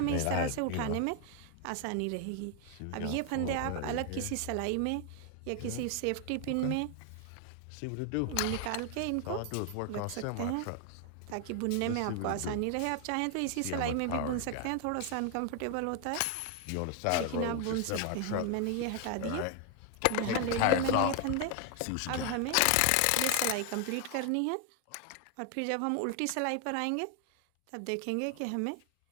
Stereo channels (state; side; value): different; both; correlation 0.00